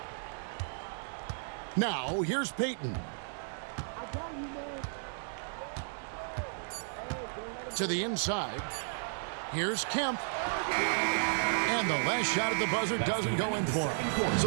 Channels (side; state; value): left; silent; digital silence